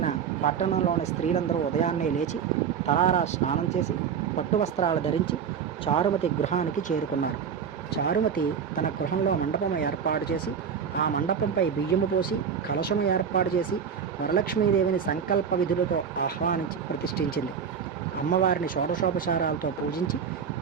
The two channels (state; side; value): quieter; left; 7.3 dB